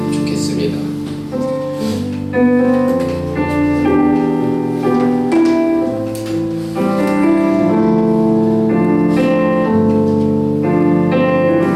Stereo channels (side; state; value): both; identical; correlation 1.00